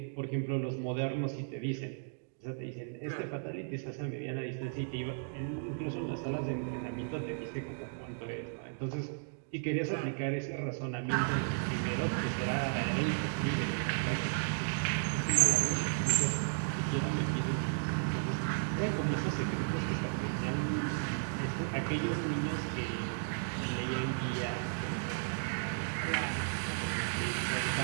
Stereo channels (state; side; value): silent; left; digital silence